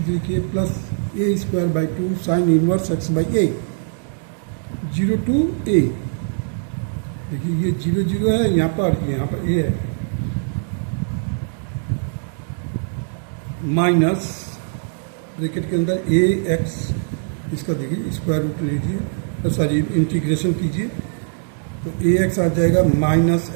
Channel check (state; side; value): silent; left; digital silence